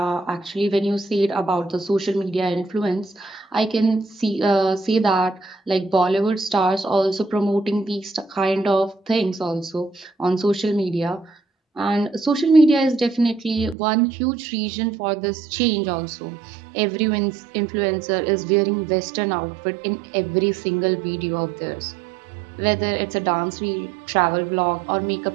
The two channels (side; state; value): left; drops out; at 13.8 s